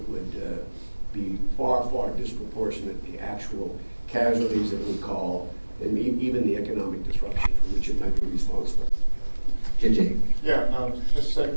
would be far, far disproportionate to the actual casualties that we call, and even the economic disruption for which it might be responsible. JJ. Yeah, Mr.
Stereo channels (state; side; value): inverted; both; correlation -1.00